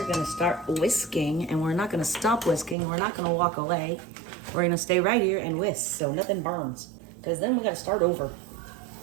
gonna start whisking, and we're not gonna stop whisking. We're not gonna walk away. We're gonna stay right here and whisk so nothing burns, because then we gotta start over.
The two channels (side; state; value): left; drops out; at 2.8 s